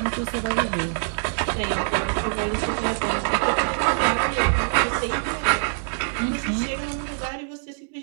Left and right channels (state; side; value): silent; left; digital silence